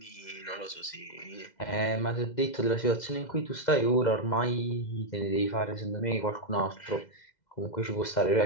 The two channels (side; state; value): right; late; 2.0 ms